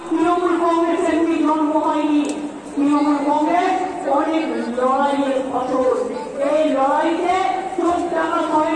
তৃণমূল কংগ্রেস এমনি জন্ম হয়নি, তৃণমূল কংগ্রেস অনেক লড়াইয়ের ফসল। এই লড়াইতে চোখ টাকা হয়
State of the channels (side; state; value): both; identical; correlation 1.00